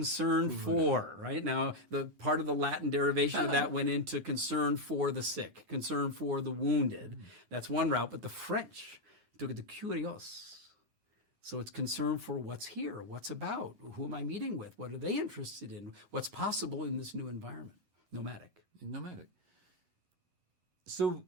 for, right? Now, the part of the Latin derivation of that went into concern for the sick, concern for the wounded. That's one route, but the French took it to curios. So it's concern for what's here, what's about, who am I meeting with, what are they interested in, what's possible in this new environment. Nomadic. So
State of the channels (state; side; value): late; left; 10 ms